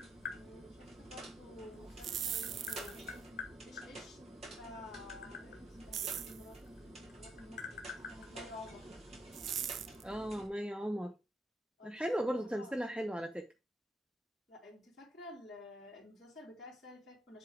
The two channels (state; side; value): normal; both; correlation 0.77